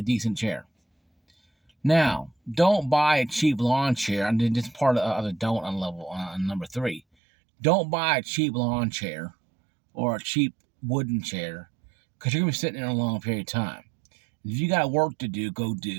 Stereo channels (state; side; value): drops out; left; at 7.0 s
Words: decent chair. Now, don't buy a cheap lawn chair. And this is part of the don't on number 3. Don't buy a cheap lawn chair or a cheap wooden chair, because you're going to be sitting in a long period of time. If you got work to do, go